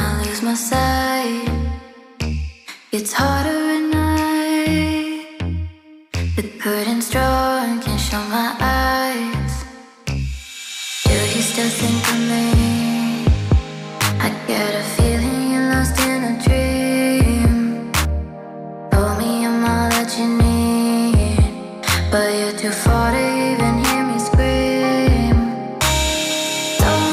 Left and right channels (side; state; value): both; identical; correlation 1.00